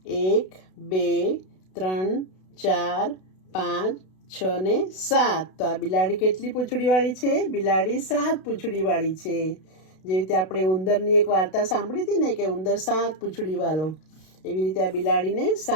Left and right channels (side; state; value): right; late; 32 ms